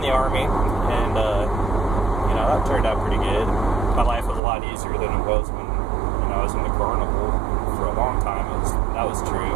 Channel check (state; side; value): drops out; left; at 4.4 s